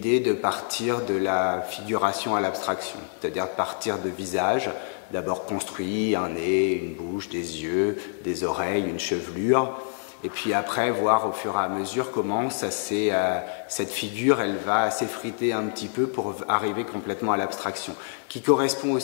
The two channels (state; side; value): silent; right; 61 dB below the other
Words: de partir de la figuration à l'abstraction, c'est-à-dire de partir de visages, d'abord construit, un nez, une bouche, des yeux, des oreilles, une chevelure, et puis après voir au fur et à mesure comment cette figure elle va s'effriter un petit peu pour arriver complètement à l'abstraction, qui correspond